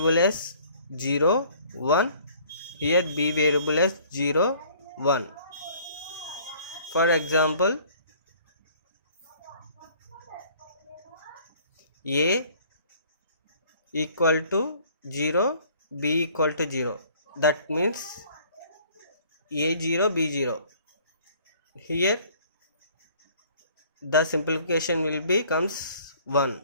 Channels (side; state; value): both; inverted; correlation -0.55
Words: as 0 1, here B variable as 0 1. For example, A equal to 0, B equal to 0. That means A0, B0. Here the simplification will becomes 1.